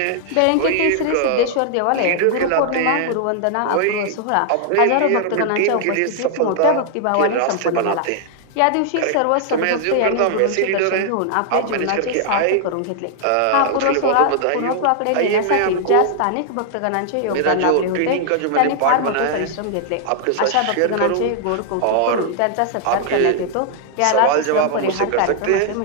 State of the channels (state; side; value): different; both; correlation -0.01